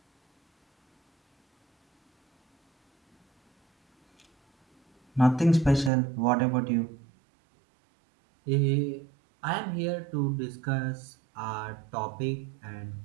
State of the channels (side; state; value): left; drops out; at 5.9 s